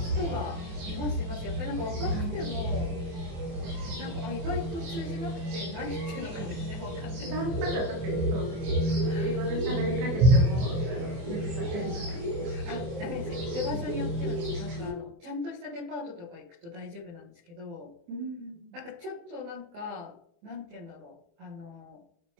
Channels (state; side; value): late; left; 24 ms